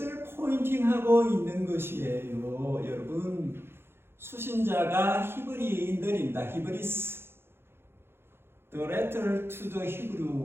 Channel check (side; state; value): left; late; 0.11 ms